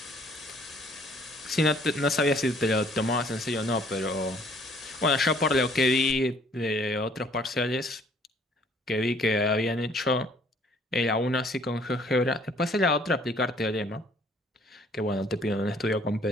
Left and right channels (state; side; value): normal; both; correlation 0.60